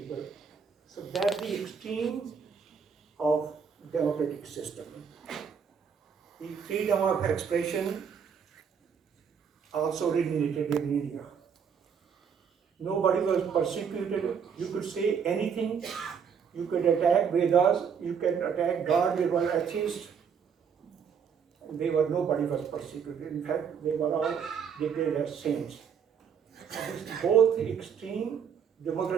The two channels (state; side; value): quieter; left; 6.9 dB